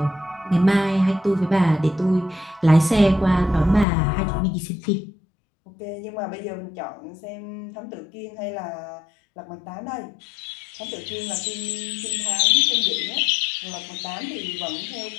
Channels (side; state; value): right; drops out; at 3.9 s